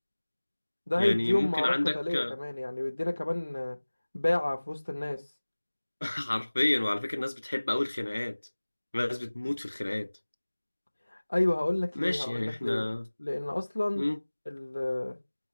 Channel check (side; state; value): both; inverted; correlation -1.00